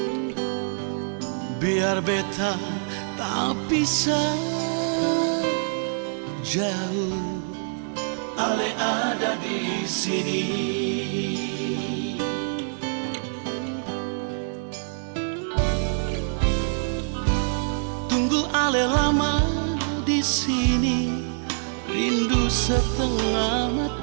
Biar beta tak bisa jauh, ale ada di sini. Tunggu ale lama di sini, rindu setengah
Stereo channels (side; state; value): left; silent; digital silence